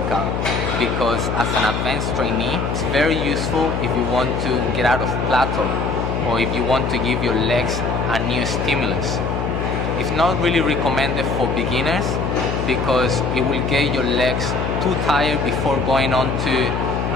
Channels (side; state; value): left; noise; hum, 2 dB below the sound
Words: because as an advanced trainee, it's very useful if you want to get out of plateau or if you want to give your legs a new stimulus. It's not really recommended for beginners because it will get your legs too tired before going on to